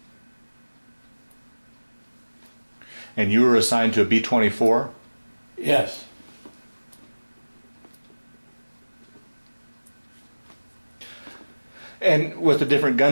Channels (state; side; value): inverted; both; correlation -1.00